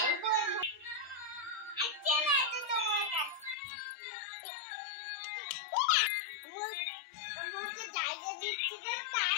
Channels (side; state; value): right; drops out; at 3.6 s